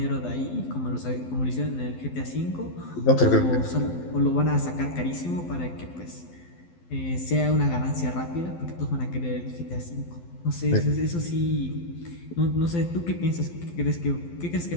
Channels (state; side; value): late; right; 12 ms